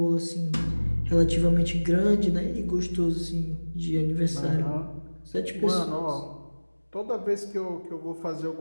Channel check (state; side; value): inverted; both; correlation -1.00